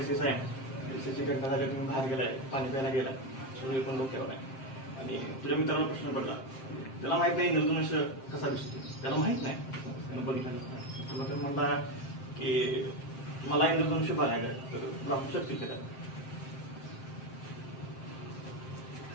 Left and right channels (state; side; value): late; right; 7.6 ms